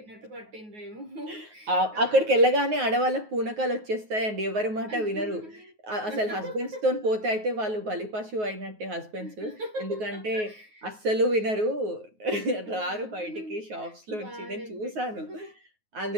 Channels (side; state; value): left; late; 9.4 ms